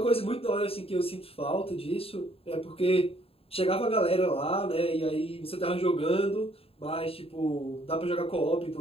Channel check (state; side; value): late; right; 0.28 ms